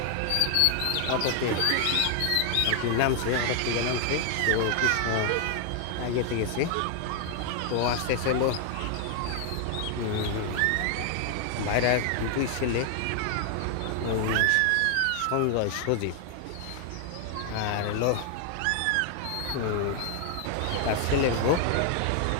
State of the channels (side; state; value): both; different; correlation 0.00